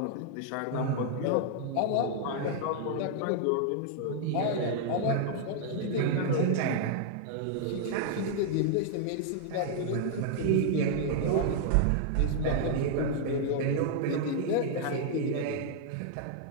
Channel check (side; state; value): both; different; correlation -0.01